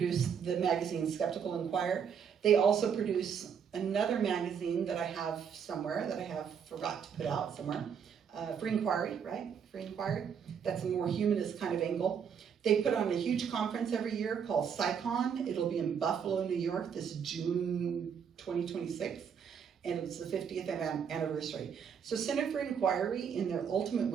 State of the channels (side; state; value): left; quieter; 7.3 dB